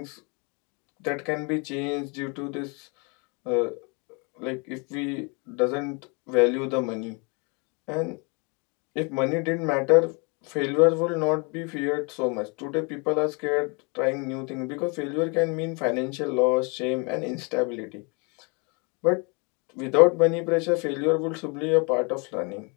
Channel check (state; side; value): quieter; right; 32.6 dB